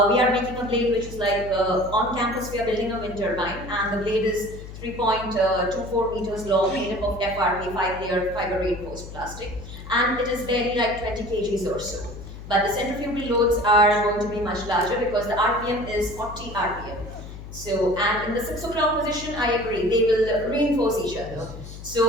We are making a blade which is like on campus we are building a wind turbine, and the blade is 3.24 meters long, made up of FRP, 5-layer fiber reinforced plastic, and it is barely like 20 kgs or so. But the centrifugal loads are going to be much larger because the RPM is 40 RPM. So, and in the 6 o'clock position, I agree, they will reinforce each other.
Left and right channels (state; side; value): noise; left; hum, 12 dB below the sound